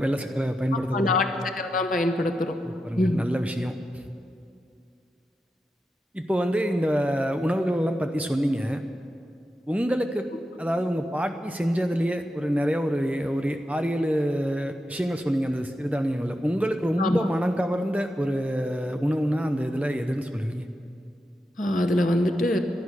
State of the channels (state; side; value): normal; both; correlation 0.88